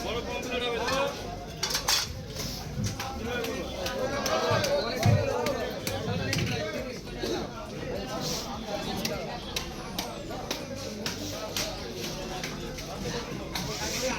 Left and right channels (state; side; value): identical; both; correlation 1.00